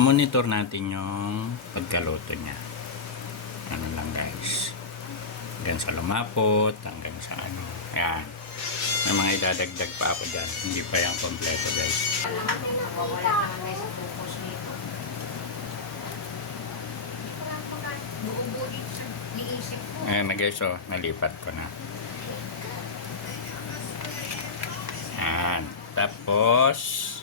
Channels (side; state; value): right; quieter; 4.2 dB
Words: natin yung pagkaluto niya. Ano lang guys. Hanggang sa lumapot, hanggang sa ano. Yan. May mga idadagdag pa ako dyan. Hindi pa yung kompleto guys. Wala naman sa focus nito. Hindi ko lang buo-buo dito sa liisip ko. Ayan na guys, oh, nalipat ko na. Ayan. Tapos,